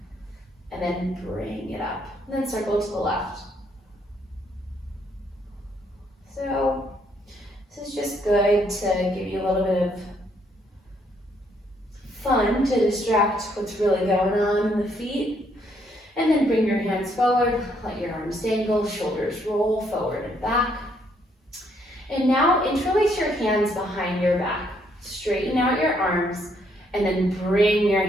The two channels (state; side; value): normal; both; correlation 0.71